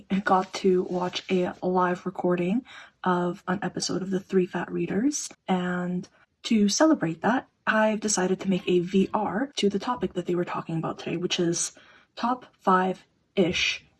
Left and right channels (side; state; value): both; identical; correlation 1.00